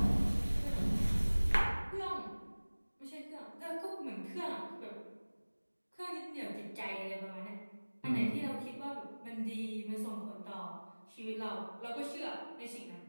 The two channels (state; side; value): inverted; both; correlation -1.00